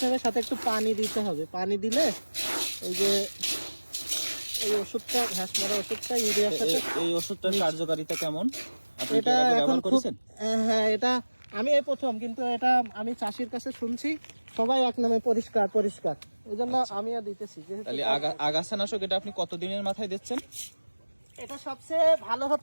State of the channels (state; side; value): inverted; both; correlation -1.00